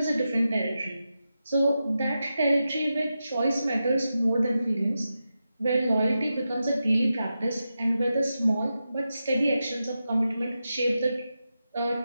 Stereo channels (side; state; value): both; inverted; correlation -0.90